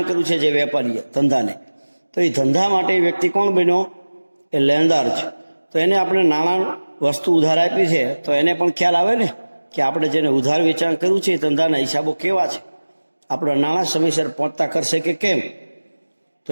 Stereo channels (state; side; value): inverted; both; correlation -1.00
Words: કર્યું છે, જે વેપારીએ ધંધાને, તો એ ધંધા માટે વ્યક્તિ કોણ બન્યો? એ લેણદાર છે. તો એને આપણે નાણાં વસ્તુ ઉધાર આપી છે, તો એને પણ ખ્યાલ આવે ને કે આપણે જેને ઉધાર વેચાણ કર્યું છે એ ધંધાના હિસાબો કેવા છે, આપણા નાણાં સમયસર પહોંચતા કરશે કે કેમ. તો